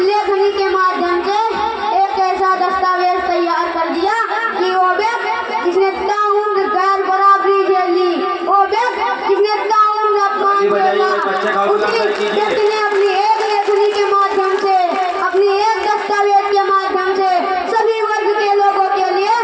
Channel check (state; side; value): identical; both; correlation 1.00